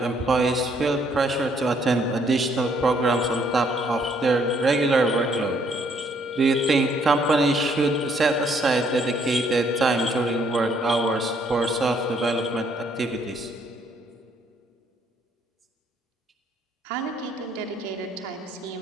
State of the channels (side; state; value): both; normal; correlation 0.67